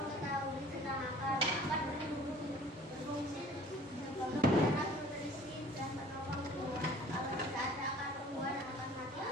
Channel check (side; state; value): both; normal; correlation 0.50